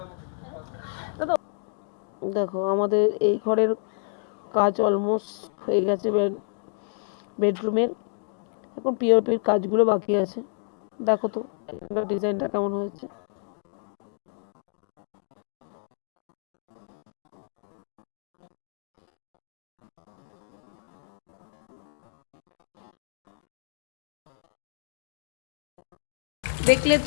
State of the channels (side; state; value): right; silent; digital silence